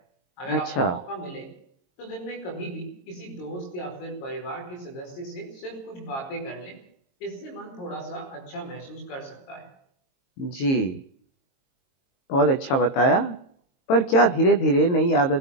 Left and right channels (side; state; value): right; late; 22 ms